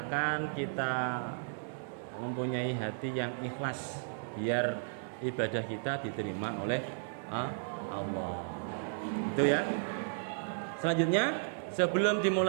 kita mempunyai hati yang ikhlas biar ibadah kita diterima oleh Allah. Itu ya. Selanjutnya, sebelum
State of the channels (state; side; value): silent; left; digital silence